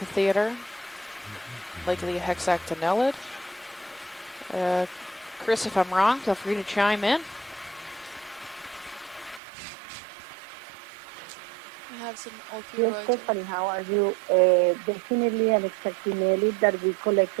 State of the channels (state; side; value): drops out; left; at 9.4 s